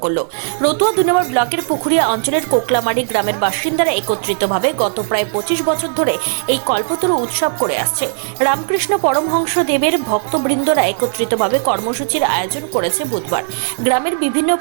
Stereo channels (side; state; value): left; silent; digital silence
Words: করল। রতুয়া 2 নম্বর ব্লকের পুকুরিয়া অঞ্চলের কোকলামারি গ্রামের বাসিন্দারা একত্রিতভাবে গত প্রায় 25 বছর ধরে এই কল্পতরু উৎসব করে আসছে। রামকৃষ্ণ পরমহংস দেবের ভক্তবৃন্দরা একত্রিতভাবে কর্মসূচির আয়োজন করেছে বুধবার। গ্রামের বিভিন্ন